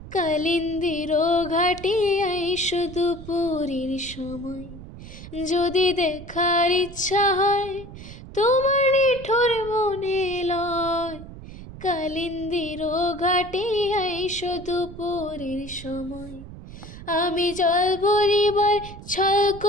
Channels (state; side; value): noise; right; rumble, 14 dB below the sound